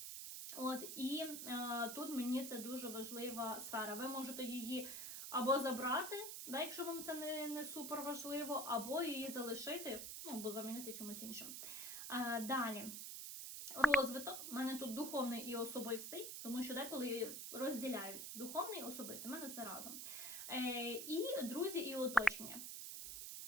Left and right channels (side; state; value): right; noise; hiss, 6 dB below the sound